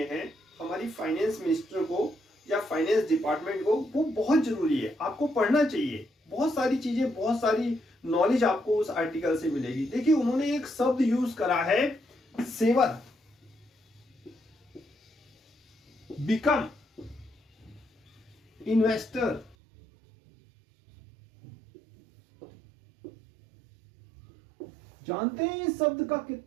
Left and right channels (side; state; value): left; drops out; at 19.6 s